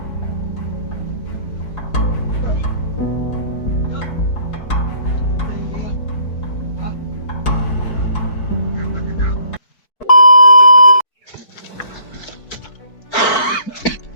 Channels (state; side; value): late; right; 4.5 ms